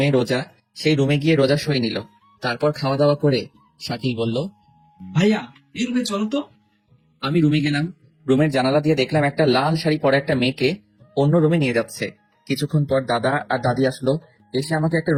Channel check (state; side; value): identical; both; correlation 1.00